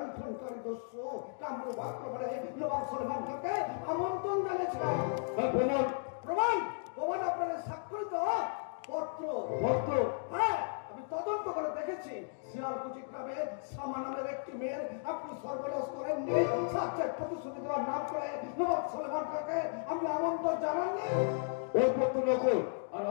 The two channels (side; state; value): right; silent; digital silence